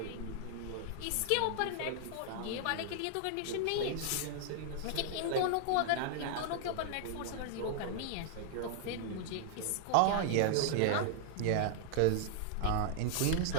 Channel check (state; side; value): different; both; correlation -0.01